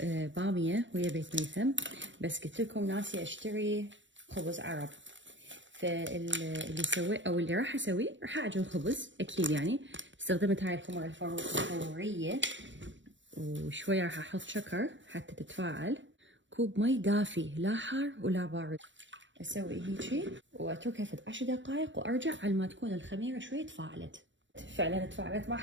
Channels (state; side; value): late; left; 0.54 ms